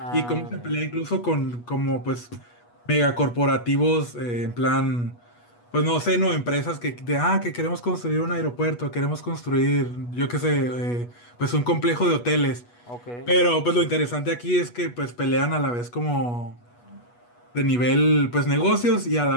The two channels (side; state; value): right; late; 8.3 ms